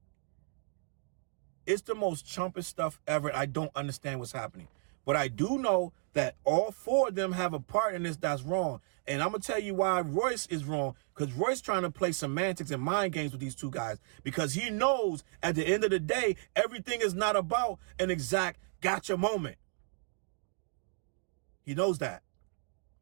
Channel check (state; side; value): silent; left; 55 dB below the other